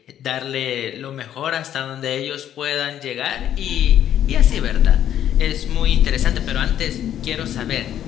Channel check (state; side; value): quieter; right; 10.7 dB